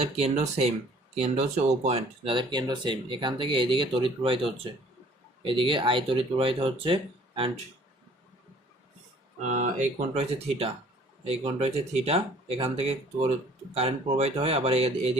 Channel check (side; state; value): both; normal; correlation 0.55